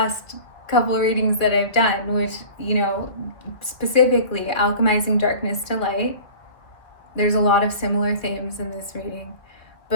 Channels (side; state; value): right; late; 2.0 ms